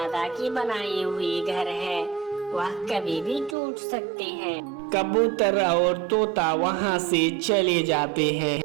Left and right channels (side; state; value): left; drops out; at 3.6 s